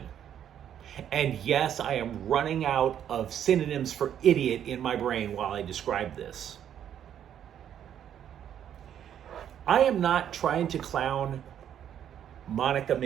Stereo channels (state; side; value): quieter; left; 9.7 dB